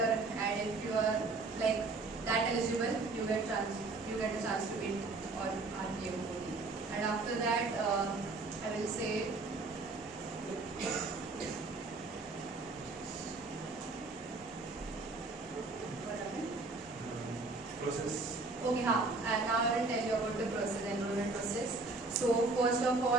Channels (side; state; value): left; quieter; 3.5 dB